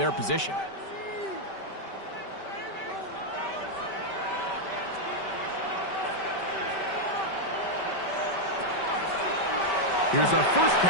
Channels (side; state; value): right; late; 5.2 ms